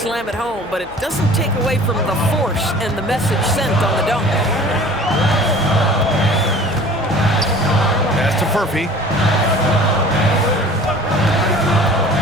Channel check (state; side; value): noise; left; hum, 23 dB below the sound